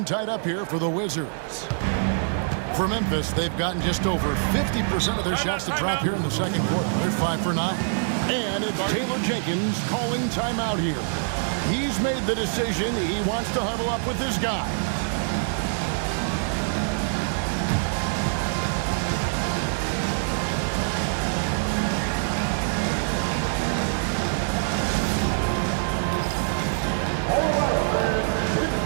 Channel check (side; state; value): left; silent; digital silence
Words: tied up here for the Wizards. For Memphis, they've gotten just over 50% of their shots to drop here in the second quarter. They're 5 for 9. And it's Taylor Jenkins calling timeout here. He's made the decision. He wants to huddle up with his guys.